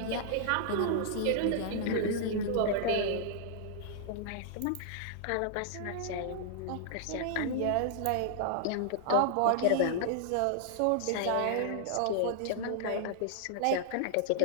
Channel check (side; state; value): both; different; correlation -0.01